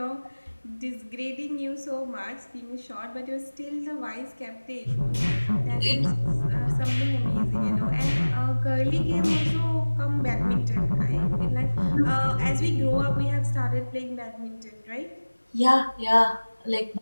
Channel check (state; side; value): inverted; both; correlation -1.00